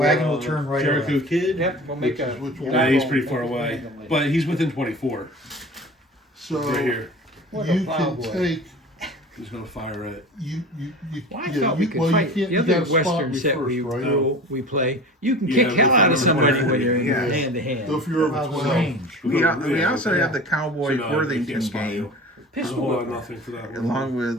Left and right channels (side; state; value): both; normal; correlation 0.38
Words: will for, turn right Jericho around. Kid. Yep, we'll make a. Which one? Nah, he's pretty far away, but he's within 24. So Right here. What a you can plowboy. take He's gonna fire it. you. Well, I yeah, thought we you- could well, fight. You, The you other gotta spot Western me set first, we right? we play, you can Yeah, kick we hell out of fight somebody over when you're Yeah. hand to hand. So if you're over How's the 12, range? We Yeah, also yeah. have the Cowboy So, no, Worthington you can't spot game, you. There's a Pistol whole lot of whipper. nothing for that one. along